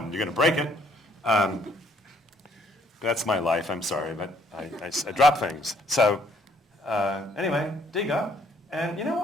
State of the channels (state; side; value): normal; both; correlation 0.65